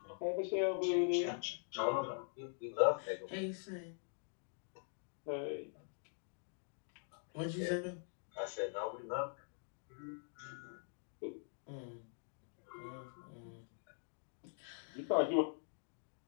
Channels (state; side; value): silent; right; digital silence